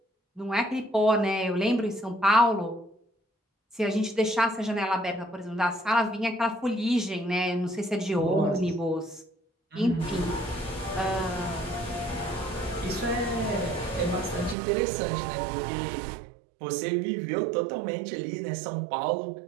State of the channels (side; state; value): left; drops out; at 14.6 s